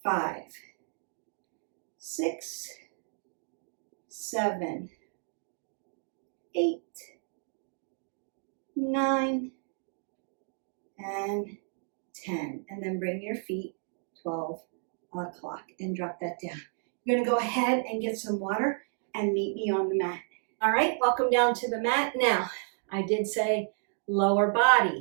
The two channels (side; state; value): left; silent; 57 dB below the other